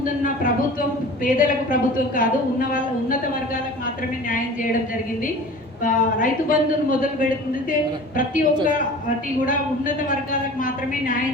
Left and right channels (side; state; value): both; normal; correlation 0.41